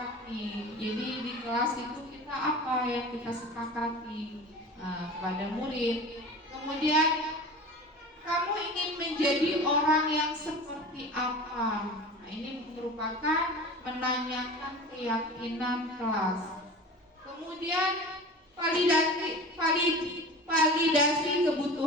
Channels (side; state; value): both; normal; correlation 0.36